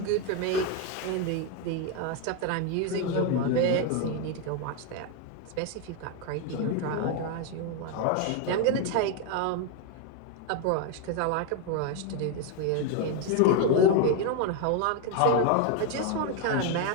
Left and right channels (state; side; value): different; both; correlation 0.02